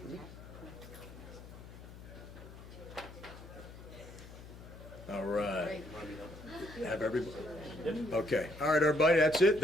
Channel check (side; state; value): left; noise; hum, 15 dB below the sound